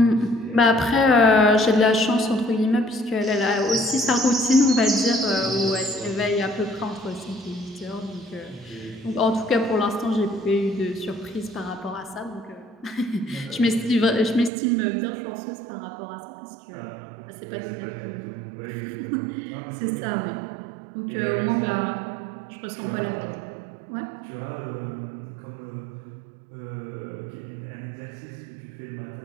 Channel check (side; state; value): left; drops out; at 14.5 s